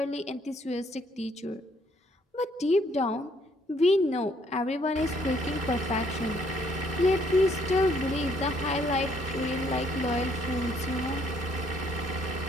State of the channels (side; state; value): both; normal; correlation 0.66